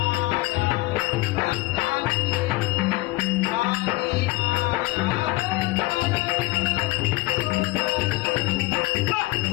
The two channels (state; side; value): quieter; right; 20.5 dB